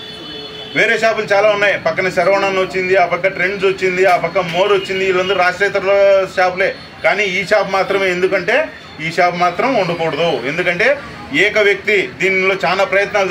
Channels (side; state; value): both; identical; correlation 1.00